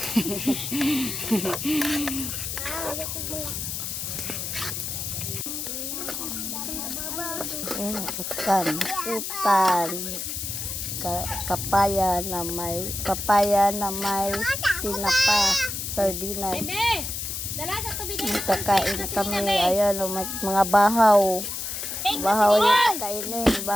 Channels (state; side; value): noise; left; hiss, 5 dB below the sound